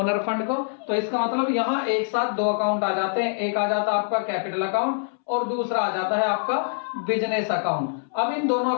फंड को। तो इसका मतलब यहाँ एक साथ 2 अकाउंट आ जाते हैं। एक आ जाता है आपका कैपिटल अकाउंट और दूसरा आ जाता है आपका बिजनेस अकाउंट। अब इन दोनों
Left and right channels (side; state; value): right; silent; 62 dB below the other